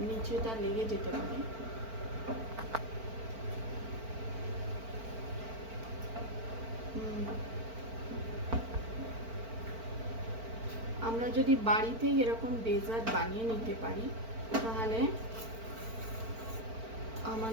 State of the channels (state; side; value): late; left; 4.4 ms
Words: নিচেটা লেগে যেতে পারে। আমরা যদি বাড়িতেই এরকম ডেজার্ট বানিয়ে নিতে পারি, তাহলে